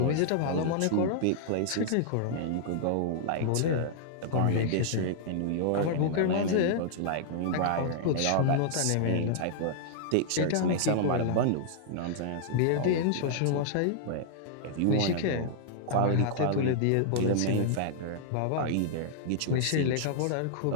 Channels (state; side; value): different; both; correlation -0.01